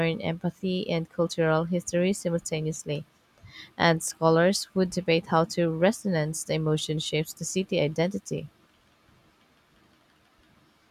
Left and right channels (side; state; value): both; identical; correlation 1.00